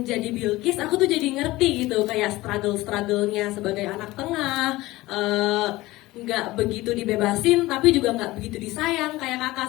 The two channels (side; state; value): right; quieter; 18.7 dB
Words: Bilkis, aku tuh jadi ngerti gitu kayak struggle-nya sebagai anak tengah. Nggak begitu dibebasin, tapi juga nggak begitu disayang kayak kakak